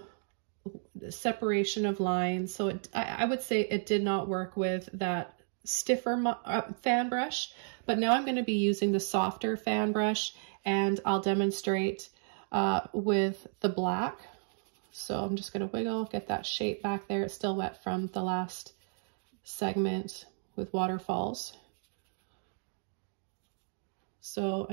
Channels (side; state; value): left; silent; digital silence